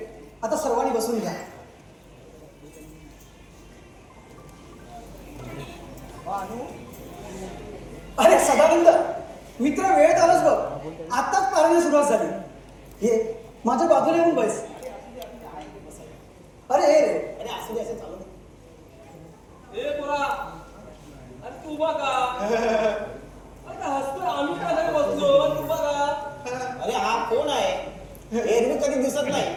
आता सर्वांनी बसून घ्या. अरे सदानंद मित्र, वेळेत आलास बघ. आताच पारायण सुरुवात झाली. हे माझ्या बाजूला येऊन बस. अरे हे रे, अरे असं असं चालू ए पोरा, अरे तू बघा. अरे हसतोय, आम्ही का नाही बसलो? तू बघा. अरे हा कोण आहे? एरवी कधी दिसत नाही,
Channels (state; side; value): identical; both; correlation 1.00